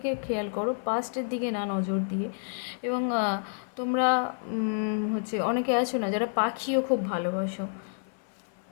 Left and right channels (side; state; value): right; silent; 55 dB below the other